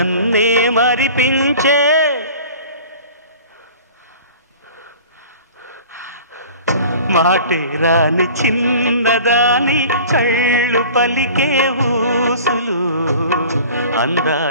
మరిపించే మాటే రాని చిన్నదాని కళ్ళు పలికే ఊసులు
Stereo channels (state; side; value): inverted; both; correlation -0.43